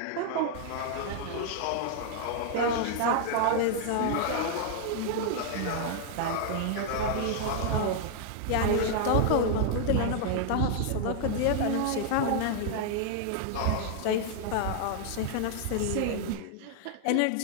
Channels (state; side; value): different; both; correlation 0.00